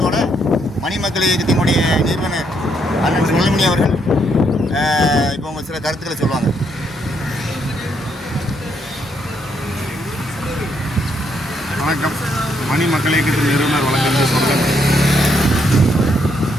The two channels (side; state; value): both; normal; correlation 0.74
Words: மணிமக்கள் இயக்கத்தினுடைய நிறுவனர் அண்ணன் சுழல்மணி அவர்கள் இப்போ உங்கள் சில கருத்துக்களை சொல்லுவாங்க. வணக்கம். மணிமக்கள் இயக்கத்தின் நிறுவனர் வழங்குகின்ற சொல்லுங்கள்.